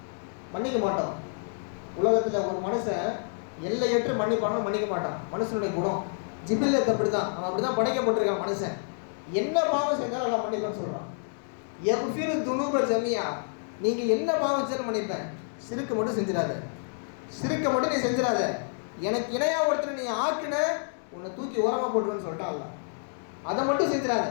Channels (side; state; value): right; silent; 59 dB below the other